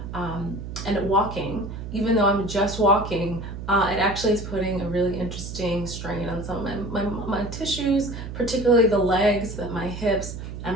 and walking, even though I'm just walking, it actually is putting a really interesting strain on some of my tissues, particularly the legs, my hips, and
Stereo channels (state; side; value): noise; right; hum, 9 dB below the sound